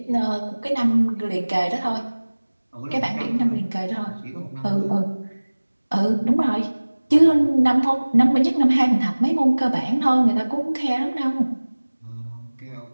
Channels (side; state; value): both; inverted; correlation -1.00